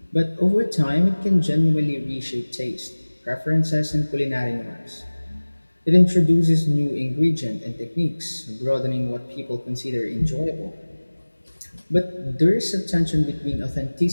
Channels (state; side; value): inverted; both; correlation -1.00